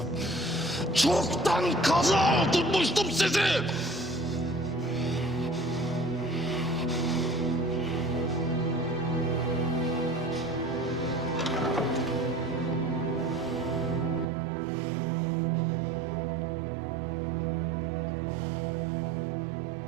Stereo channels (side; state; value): left; drops out; at 14.2 s